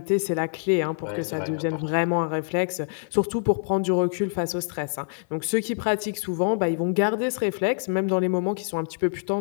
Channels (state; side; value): silent; right; 61 dB below the other